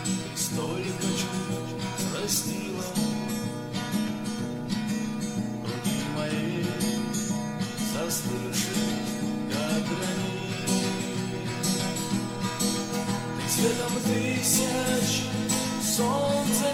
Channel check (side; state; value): both; identical; correlation 1.00